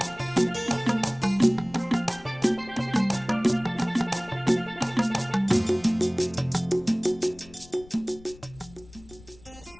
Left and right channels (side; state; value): left; noise; rumble, 22 dB below the sound